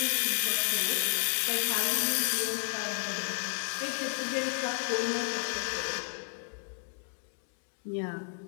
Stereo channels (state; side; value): silent; right; 56 dB below the other